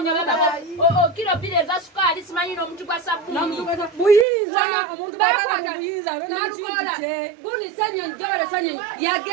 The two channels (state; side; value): drops out; left; at 4.2 s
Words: kilo bile za sukali simanyi n'omuntu gwa sabuni buyinza omuntu bakwata buyinza Nalukoola guni senyo njole senyo